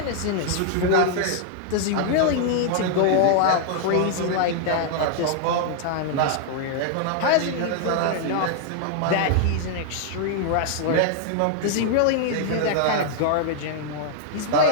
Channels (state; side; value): different; both; correlation 0.00